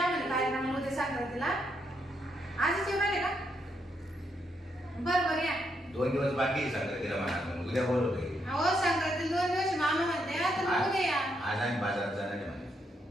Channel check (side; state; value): both; normal; correlation 0.78